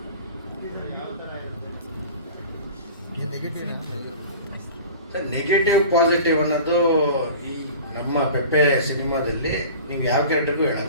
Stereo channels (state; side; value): inverted; both; correlation -0.39